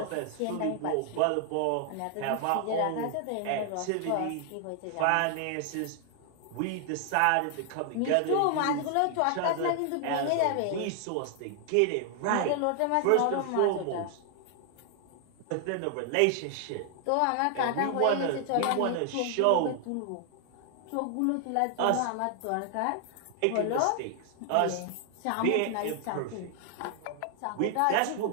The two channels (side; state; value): both; different; correlation 0.00